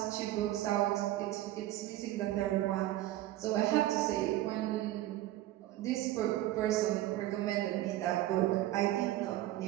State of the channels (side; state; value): left; quieter; 14.9 dB